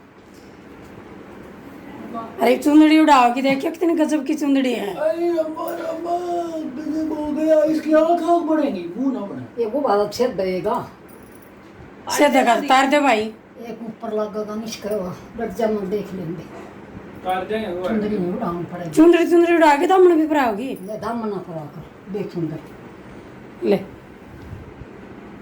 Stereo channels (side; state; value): both; identical; correlation 1.00